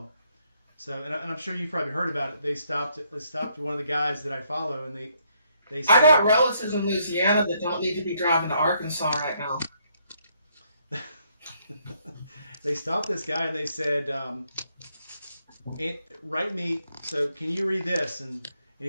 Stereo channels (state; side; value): inverted; both; correlation -0.71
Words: So, and I'm sure you've probably heard about it. They stopped one of the guys that I follow, and they They I got said relatives in Louisiana that don't need to be driving to Arkansas right now. they stopped this guy and they said, write me. So can you read this? And